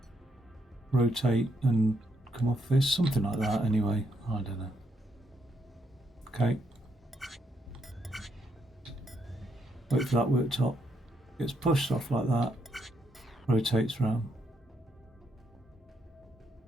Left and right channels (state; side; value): normal; both; correlation 0.77